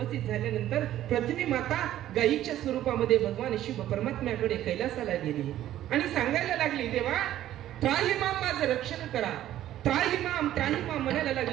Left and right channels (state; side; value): quieter; left; 12.8 dB